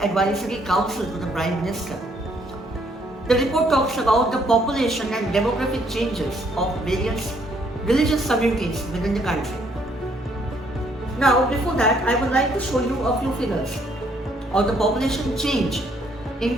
Advisory Council to the Prime Minister. The report talks about the population and demographic changes of various religious communities within the country. Now, before that, I would like to show you a few figures of the population change in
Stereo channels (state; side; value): normal; both; correlation 0.68